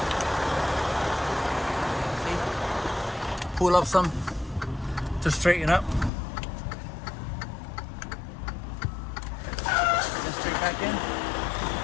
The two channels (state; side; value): drops out; right; at 6.1 s